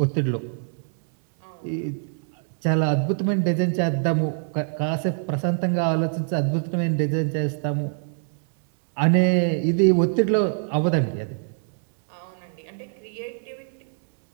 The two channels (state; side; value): silent; left; digital silence